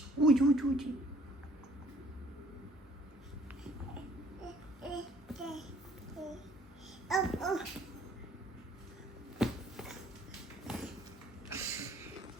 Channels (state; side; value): normal; both; correlation 0.59